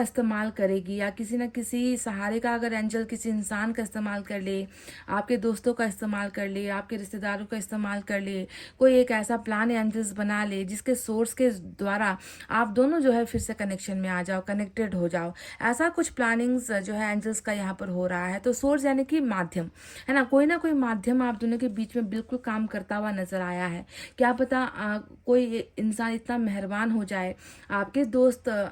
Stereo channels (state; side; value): identical; both; correlation 1.00